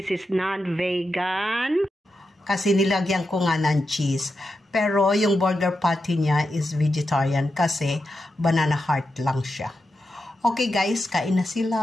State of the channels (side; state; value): both; normal; correlation 0.88